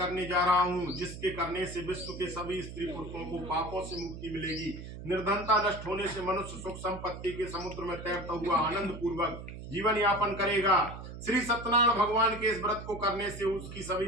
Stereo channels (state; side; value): noise; right; hum, 11 dB below the sound